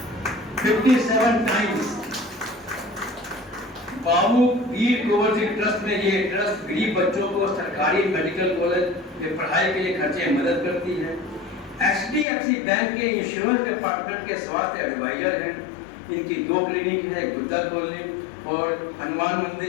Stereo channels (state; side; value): drops out; right; at 12.2 s